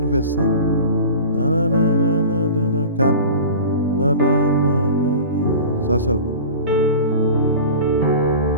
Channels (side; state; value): both; inverted; correlation -0.36